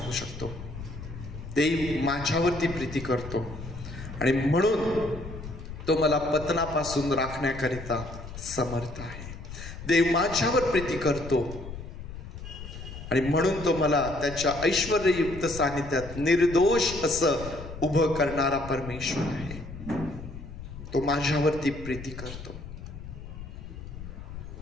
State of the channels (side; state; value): left; noise; rumble, 11 dB below the sound